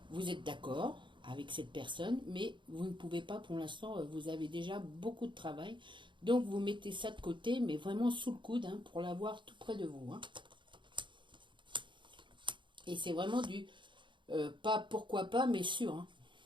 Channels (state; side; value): late; left; 0.23 ms